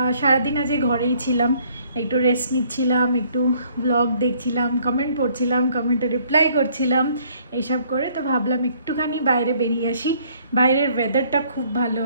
সারাদিন আজকে ঘরেই ছিলাম, একটু রেস্ট নিচ্ছিলাম, একটু ব্লগ দেখছিলাম, কমেন্ট পড়ছিলাম, কমেন্টে রিপ্লাই করছিলাম, এইসব করে। তো ভাবলাম একটুখানি বাইরে বেরিয়ে আসি, বাইরের ওয়েদারটা খুব ভালো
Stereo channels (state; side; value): inverted; both; correlation -0.62